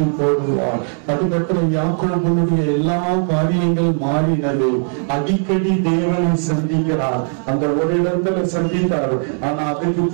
போடுவார். அதுக்கப்புறம் யாக்கோபனுடைய எல்லா காரியங்கள் மாறினது. அடிக்கடி தேவனை சந்திக்கிறார். அந்த ஒரு இடத்துல சந்தித்தார். ஆனா அதுக்கு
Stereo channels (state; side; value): silent; left; 55 dB below the other